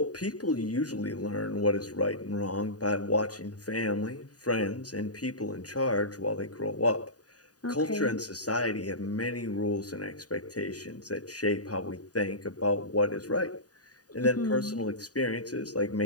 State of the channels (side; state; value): right; late; 0.68 ms